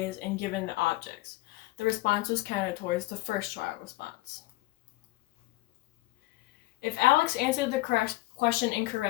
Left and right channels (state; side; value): quieter; right; 19.3 dB